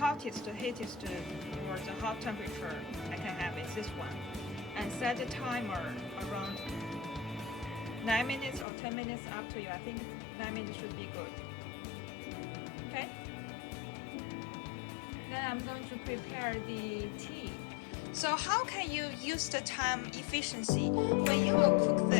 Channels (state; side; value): drops out; right; at 8.7 s